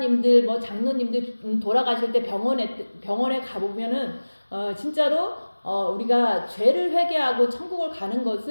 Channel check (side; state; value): both; inverted; correlation -1.00